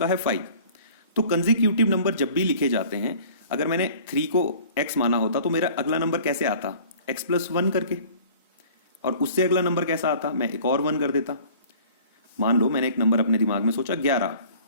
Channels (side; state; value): both; inverted; correlation -0.49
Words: है 5। तो कंसेक्यूटिव नंबर जब भी लिखे जाते हैं, अगर मैंने 3 को x माना होता तो मेरा अगला नंबर कैसे आता, x + 1 करके, और उससे अगला नंबर कैसा आता, मैं एक और 1 कर देता। मान लो मैंने एक नंबर अपने दिमाग में सोचा 11,